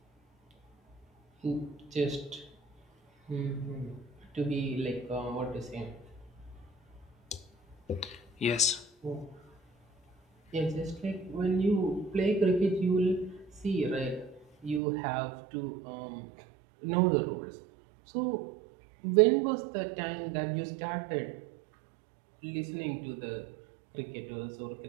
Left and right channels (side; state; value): left; drops out; at 14.8 s